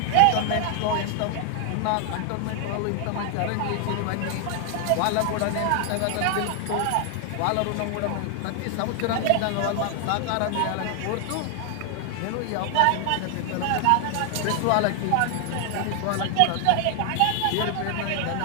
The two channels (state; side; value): different; both; correlation 0.00